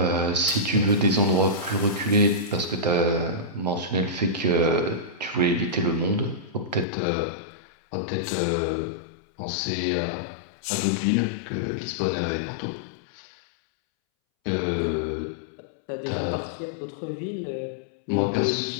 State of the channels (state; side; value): drops out; right; at 6.9 s